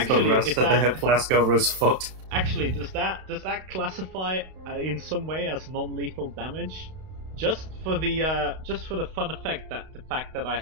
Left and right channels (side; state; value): left; late; 32 ms